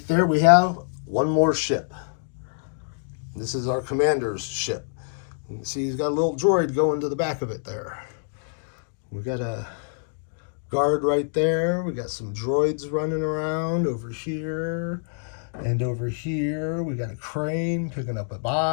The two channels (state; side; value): silent; right; digital silence